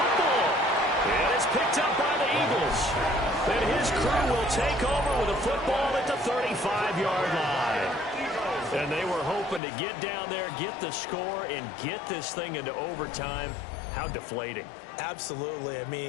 And it's picked up by the Eagles. And his crew will take over with a football at the 35-yard line. And they were hoping to get down there, get the score, and get this thing into overtime. How deflating. Absolutely. I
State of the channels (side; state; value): right; drops out; at 9.6 s